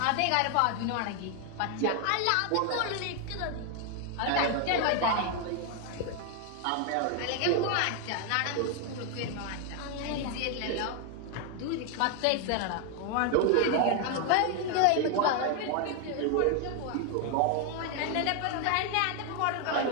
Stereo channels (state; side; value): different; both; correlation 0.00